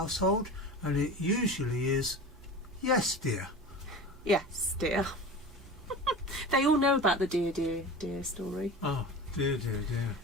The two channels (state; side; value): noise; right; hum, 23 dB below the sound